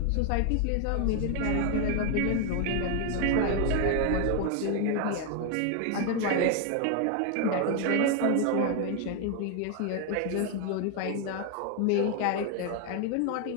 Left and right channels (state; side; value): different; both; correlation 0.01